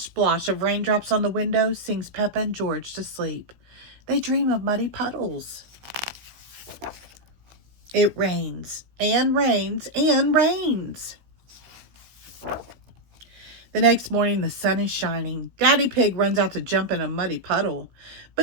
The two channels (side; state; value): left; late; 16 ms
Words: splosh of raindrops on the window sings Peppa and George to sleep. They dream of muddy puddles. It rains and rains and rains. The next morning, the sun is shining. Daddy Pig runs out to jump in a muddy puddle,